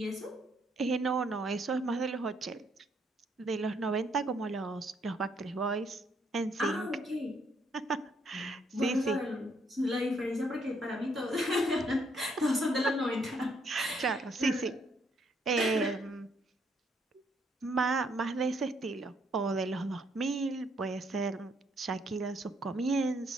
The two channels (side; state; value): both; normal; correlation 0.71